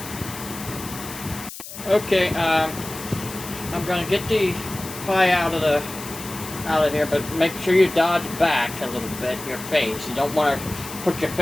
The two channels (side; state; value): left; noise; hiss, 12 dB below the sound